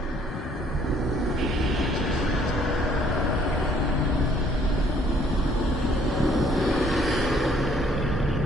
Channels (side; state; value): both; normal; correlation 0.62